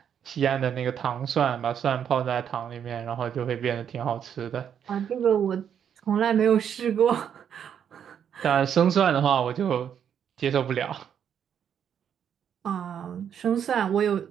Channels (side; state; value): left; quieter; 8.5 dB